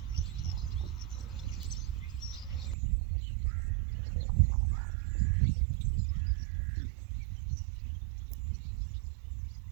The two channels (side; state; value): left; drops out; at 2.8 s